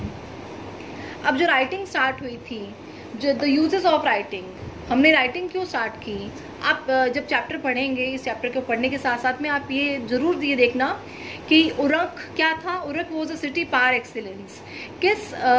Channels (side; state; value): both; identical; correlation 1.00